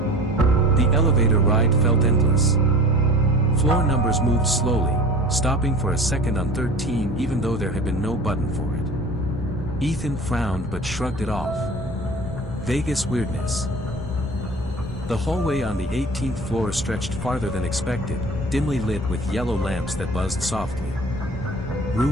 The elevator ride felt endless. Floor numbers moved slowly, stopping for a second on 13 even though there had been no button for it. Ethan frowned but shrugged it off. Vegas weirdness. The hallway on the 18th floor stretched farther than expected, dimly lit with yellow lamps that buzzed softly.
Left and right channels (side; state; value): both; normal; correlation 0.40